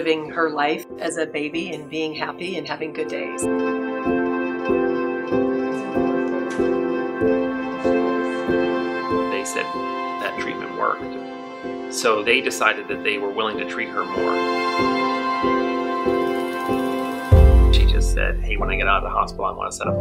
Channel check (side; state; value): both; identical; correlation 1.00